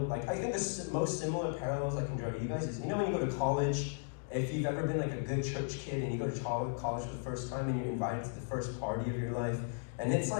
I think the most similar parallels I can draw to you guys is, when you go to college, if you've ever been like a good church kid and you go to college for the first time and you're invited to the first party of your life, and it's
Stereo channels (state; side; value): silent; right; digital silence